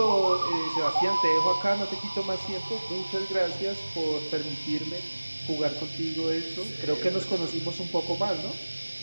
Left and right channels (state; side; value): inverted; both; correlation -1.00